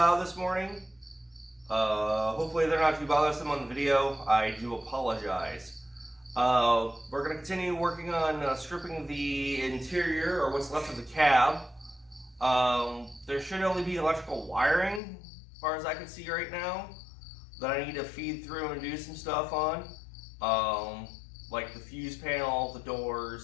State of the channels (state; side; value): drops out; right; at 15.0 s